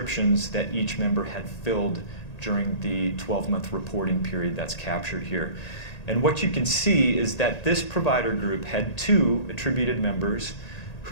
that each member had filled during the 12-month reporting period that's captured here. And what you can see is that this provider group had 2 attributed members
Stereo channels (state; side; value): late; right; 1.8 ms